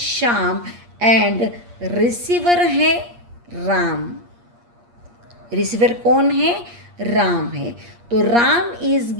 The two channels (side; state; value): left; late; 8.5 ms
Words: एंड रिसीवर है राम. रिसीवर कौन है? राम है. तो Ram is